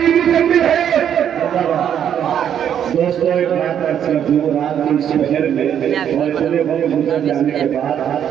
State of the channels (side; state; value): left; quieter; 9.2 dB